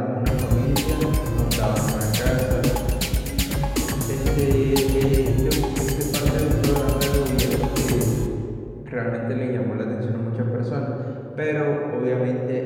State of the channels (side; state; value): both; identical; correlation 1.00